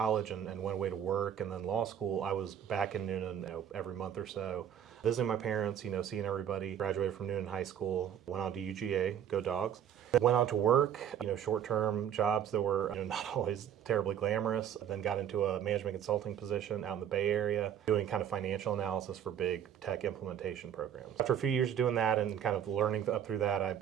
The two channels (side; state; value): left; quieter; 9.5 dB